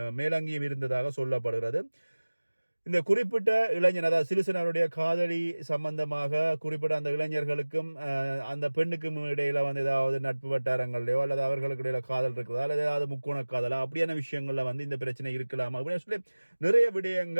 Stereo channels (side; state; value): both; inverted; correlation -1.00